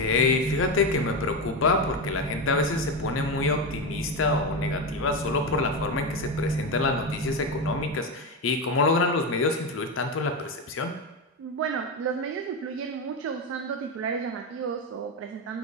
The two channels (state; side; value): normal; both; correlation 0.14